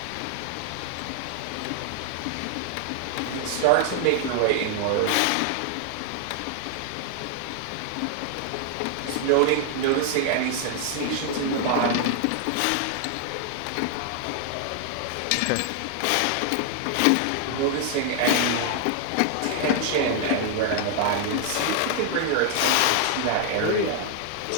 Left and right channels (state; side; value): different; both; correlation 0.00